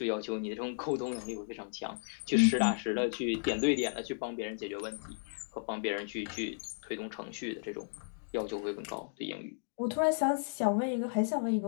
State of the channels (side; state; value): right; silent; digital silence